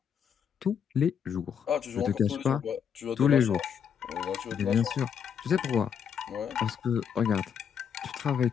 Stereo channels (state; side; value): quieter; right; 7.7 dB